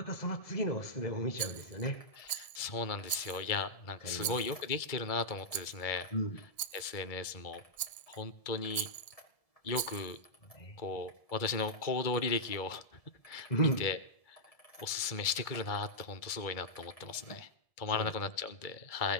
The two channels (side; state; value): right; late; 1.7 ms